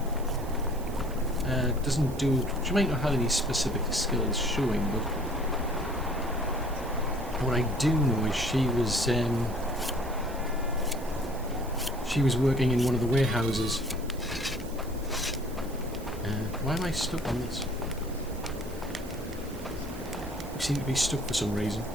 doesn't do... She might not have any specific skills showing, but what I do know is she was working in one of the warehouses. Why am I stuck on this? I seem to be stuck for some reason.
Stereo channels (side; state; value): right; noise; hiss, 19 dB below the sound